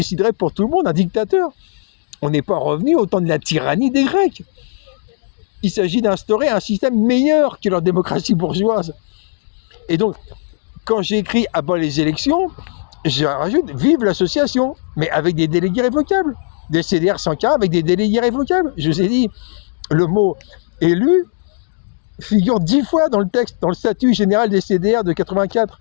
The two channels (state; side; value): silent; right; digital silence